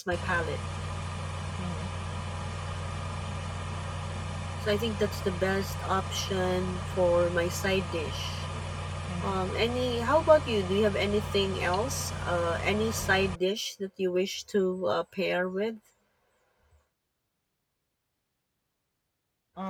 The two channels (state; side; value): identical; both; correlation 1.00